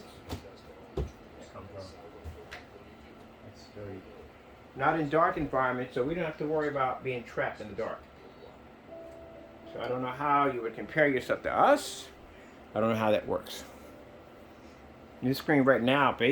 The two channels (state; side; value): identical; both; correlation 1.00